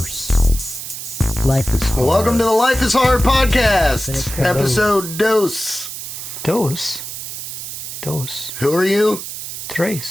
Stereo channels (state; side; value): noise; right; hiss, 8 dB below the sound